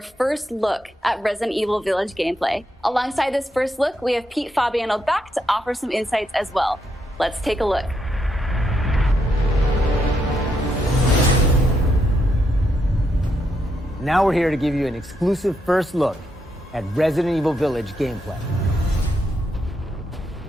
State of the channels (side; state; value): both; normal; correlation 0.80